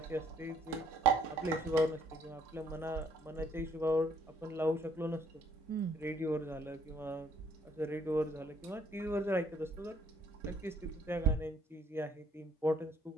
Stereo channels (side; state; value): both; normal; correlation 0.66